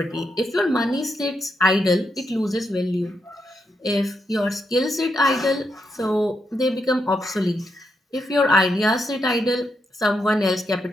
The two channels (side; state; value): both; normal; correlation 0.82